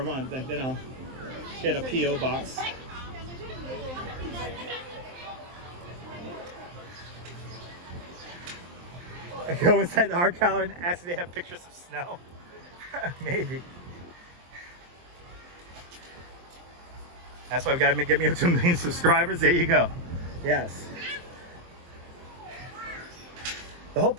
month, then I'll get a PO box. I go inside the art gallery and ask if they have pictures of snow. Maybe. That's why we gotta get me up to 1 million subscribers. There you go. Yes. The whole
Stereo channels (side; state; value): left; late; 23 ms